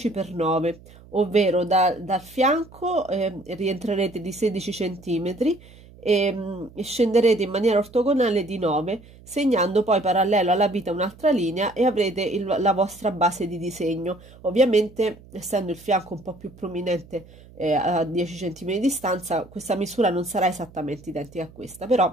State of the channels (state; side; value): noise; right; hum, 23 dB below the sound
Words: x 9, ovvero dal fianco rientrerete di 16 cm e scenderete in maniera ortogonale di 9, segnando poi parallelo alla vita un'altra linea e avrete la vostra base di disegno. Ovviamente, essendo il fianco un po' più prominente a 10 cm di distanza, questa misura non sarà esattamente identica a questa,